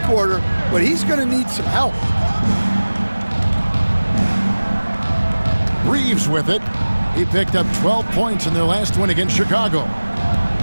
quarter, but he's going to need some help. Reeves with it. He picked up 12 points in their last win against Chicago.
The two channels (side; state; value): both; inverted; correlation -1.00